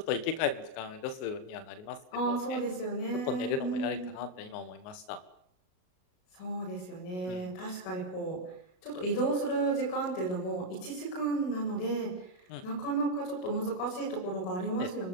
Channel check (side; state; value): right; late; 38 ms